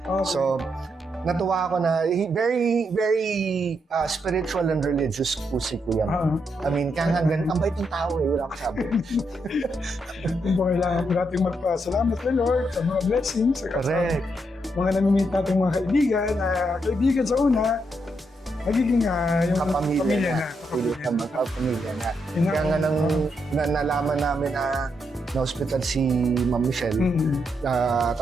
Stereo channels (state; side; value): normal; both; correlation 0.80